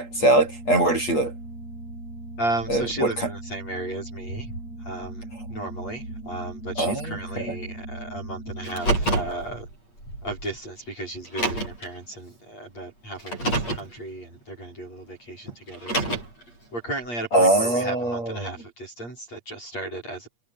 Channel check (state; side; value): late; right; 8.5 ms